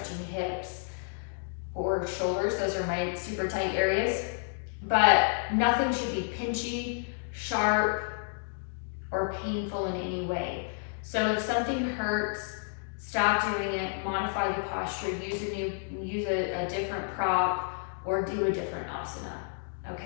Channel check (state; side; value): silent; right; digital silence